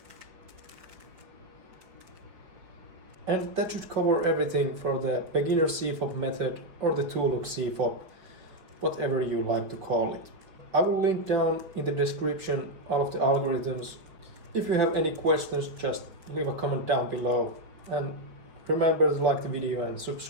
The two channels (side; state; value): left; late; 5.3 ms